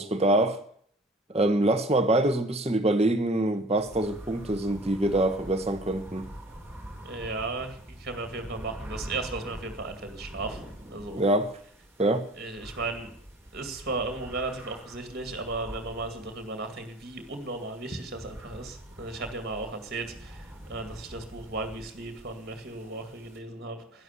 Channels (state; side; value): normal; both; correlation 0.46